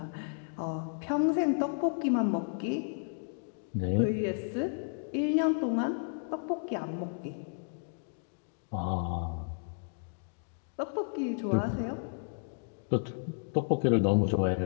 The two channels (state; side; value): silent; right; digital silence